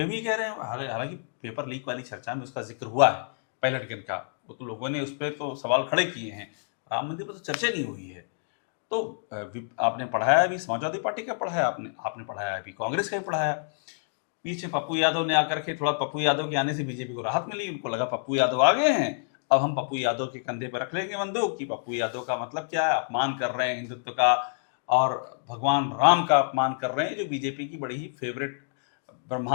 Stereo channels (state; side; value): silent; right; digital silence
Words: भी कह रहे हैं। हालांकि पेपर लीक वाली चर्चा में उसका जिक्र हुआ है, पायलट गन का, वो तो लोगों ने उस पर तो सवाल खड़े किए हैं, राम मंदिर पर तो चर्चा नहीं हुई है। तो आपने पढ़ाया भी समाजवादी पार्टी का पढ़ाया, आपने पढ़ाया अभी कांग्रेस का भी पढ़ाया। पीछे पप्पू यादव ने आकर के, थोड़ा पप्पू यादव के आने से बीजेपी को राहत मिली, उनको लगा पप्पू यादव आ गए हैं, अब हम पप्पू यादव के कंधे पर रख लेंगे बंदूक कि पप्पू यादव का मतलब क्या है, अपमान कर रहे हैं हिंदुत्व का और भगवान राम का अपमान कर रहे हैं, जो बीजेपी की बड़ी ही फेवरेट